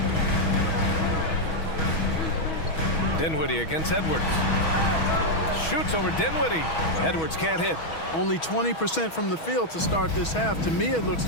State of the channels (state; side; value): late; right; 6.2 ms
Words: Dinwiddie against Edwards. Shoots over Dinwiddie. Edwards can't hit. Only 20% from the field to start this half. To me, it looks